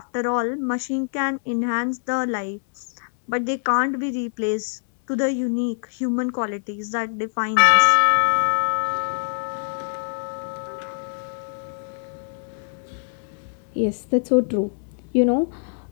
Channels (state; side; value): silent; right; digital silence